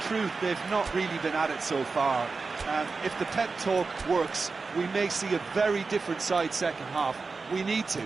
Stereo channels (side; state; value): left; quieter; 4.3 dB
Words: truth they've not really been at it so far. If the pep talk works, we may see a very different side second half. We need